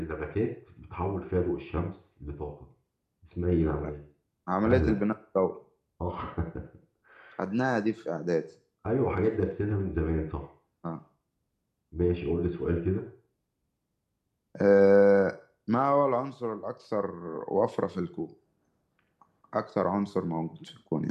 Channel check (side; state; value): both; identical; correlation 1.00